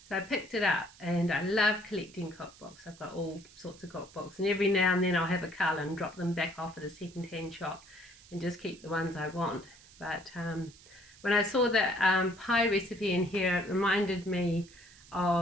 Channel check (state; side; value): noise; right; hiss, 23 dB below the sound